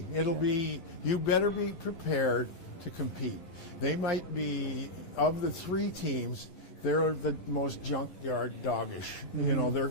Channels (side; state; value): right; late; 11 ms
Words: You better be prepared to compete. They might be, of the 3 teams, they're the most junkyard doggish. They're